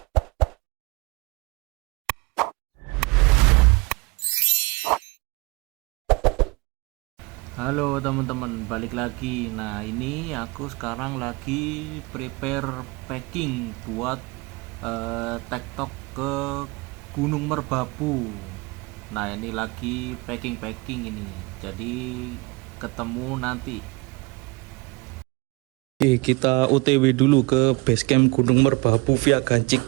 Halo teman-teman, balik lagi. Nah, ini aku sekarang lagi prepare packing buat tektok ke Gunung Merbabu. Nah, ini lagi packing ini. Jadi ketemu nanti. Oke, kita OTW dulu ke basecamp Gunung Merbabu via Gancik.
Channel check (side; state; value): left; quieter; 26.0 dB